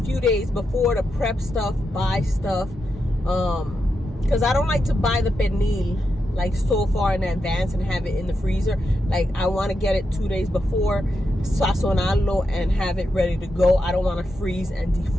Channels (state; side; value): normal; both; correlation 0.86